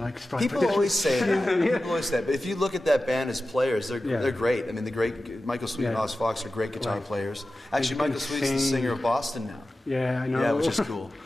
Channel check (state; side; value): normal; both; correlation 0.94